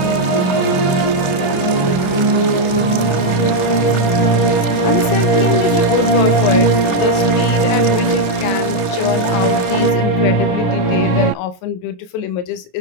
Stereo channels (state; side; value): late; right; 28 ms